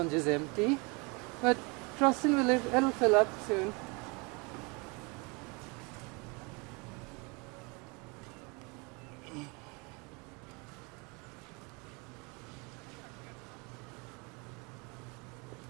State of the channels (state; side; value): quieter; left; 29.8 dB